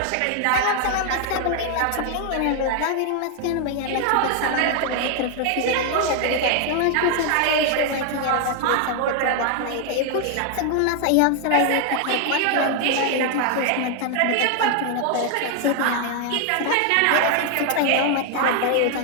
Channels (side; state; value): both; different; correlation 0.00